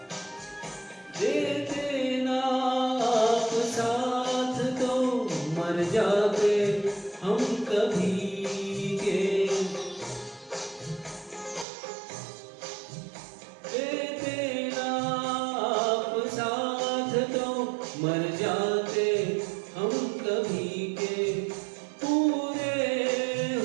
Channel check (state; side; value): drops out; left; at 11.7 s